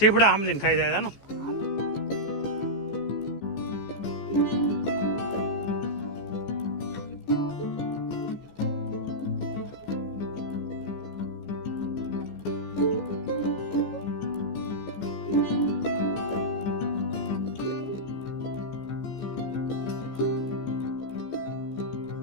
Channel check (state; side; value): late; right; 15 ms